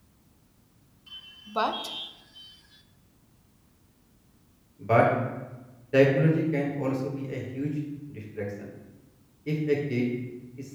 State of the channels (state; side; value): identical; both; correlation 1.00